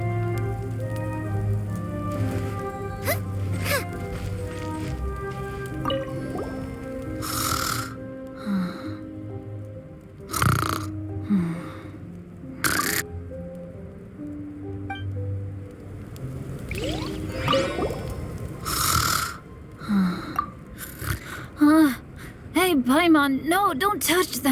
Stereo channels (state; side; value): identical; both; correlation 1.00